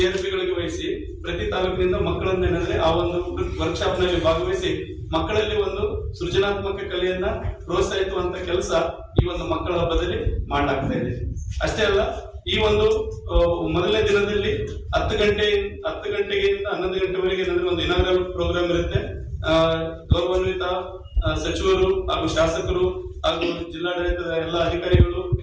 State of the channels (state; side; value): identical; both; correlation 1.00